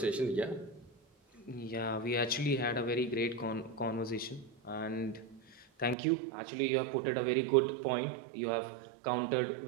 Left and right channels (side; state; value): left; drops out; at 6.0 s